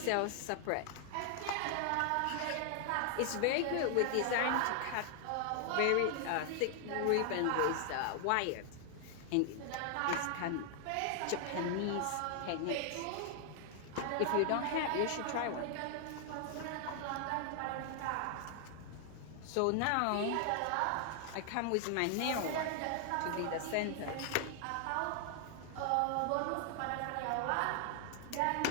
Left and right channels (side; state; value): both; different; correlation 0.00